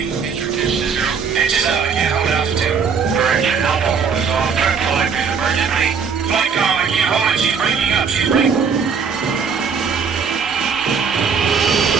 Introduce to 0. Engine up, I can't hold altitude. Correction, Alpha 4 is off. Turn flight, please, emergency. Flight calm, I can't hold it. She's breaking up. She's breaking.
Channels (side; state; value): left; quieter; 6.1 dB